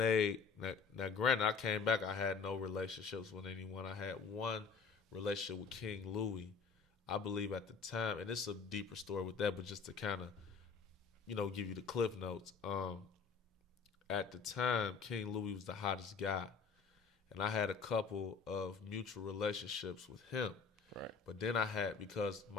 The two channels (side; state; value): right; quieter; 5.3 dB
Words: now. Granted, I came back. I had no relationships with anyone. I had one relationship with King Louis, I believe at the time, and it's a deeper story with that, but just to kind of, you know, give you the cliff notes. At the time, King Louis was the hottest guy, and I had a couple of mutual relationships with him. Right. But then I had, because